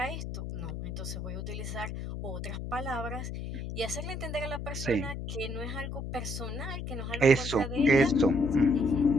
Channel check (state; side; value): noise; left; hum, 6 dB below the sound